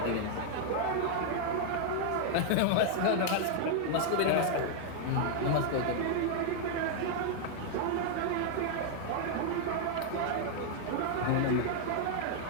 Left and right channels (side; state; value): both; different; correlation -0.01